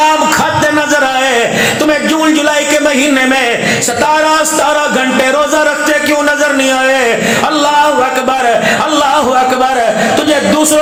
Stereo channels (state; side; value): identical; both; correlation 1.00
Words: کھاتے نظر آئے، تمہیں جون جولائی کے مہینے میں 17 گھنٹے روزہ رکھتے کیوں نظر نہیں آئے؟ اللہ اکبر، اللہ اکبر. تجھے